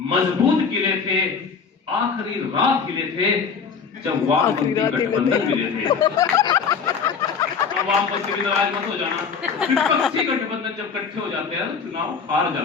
खिले थे, आखिरी रात खिले थे जब वामपंथी गठबंधन मिले थे। वामपंथी भी नाराज मत हो जाना, विपक्षी गठबंधन जब इकट्ठे हो जाते हैं तो चुनाव हार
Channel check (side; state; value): right; quieter; 5.9 dB